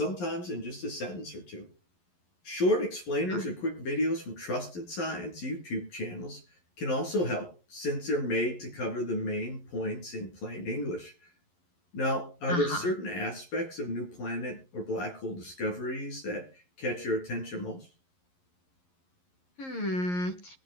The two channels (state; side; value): late; right; 11 ms